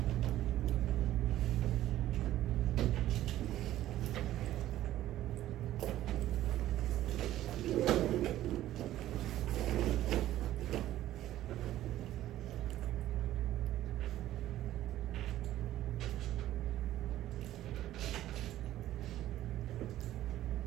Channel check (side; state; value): left; quieter; 13.7 dB